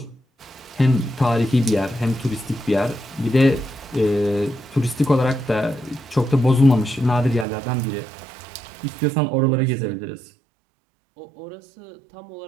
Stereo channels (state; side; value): drops out; left; at 7.5 s